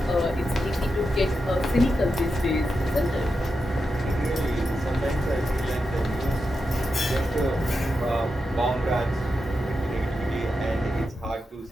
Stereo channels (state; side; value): normal; both; correlation 0.88